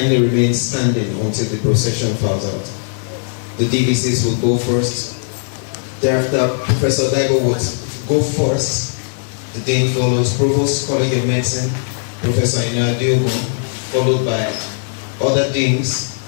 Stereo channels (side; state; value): right; silent; digital silence